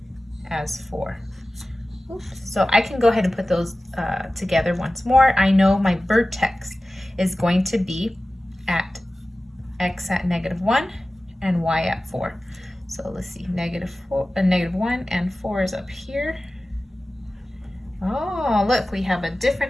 as 4. Oops. So I can go ahead and put those together once more. I know my vertex is going to be at x at -1 and y at 4. So let's see, -1 and 4 is up here. Oh, look, we have a different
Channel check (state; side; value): normal; both; correlation 0.96